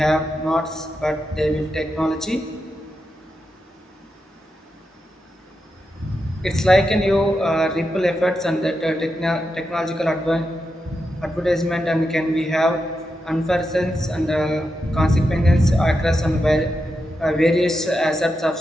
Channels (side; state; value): both; normal; correlation 0.87